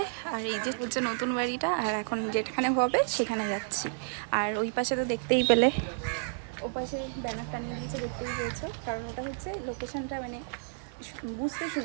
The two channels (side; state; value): left; silent; 57 dB below the other